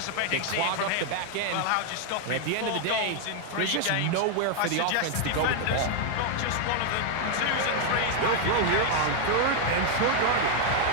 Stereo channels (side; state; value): both; different; correlation 0.00